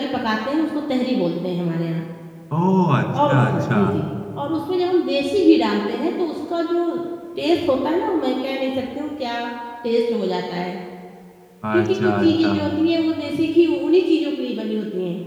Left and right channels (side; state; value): both; identical; correlation 1.00